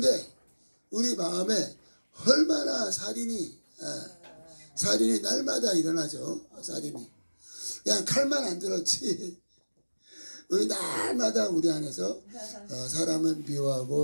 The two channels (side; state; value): both; inverted; correlation -1.00